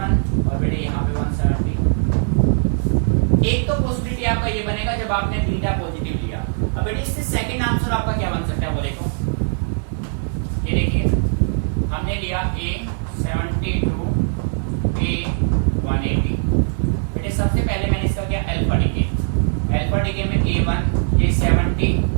और बेटे यहाँ पे 170। एक तो पॉसिबिलिटी आपका ये बनेगा जब आपने बीटा पॉजिटिव लिया। अब बेटे इससे सेकंड आंसर आपका क्या बन सकता है वो देखो, ये देखिए हमने लिया A72 A180। बेटे सबसे पहले मैंने इसका किया अल्फा डिके, अल्फा डिके में A1 ये 70,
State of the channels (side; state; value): left; silent; digital silence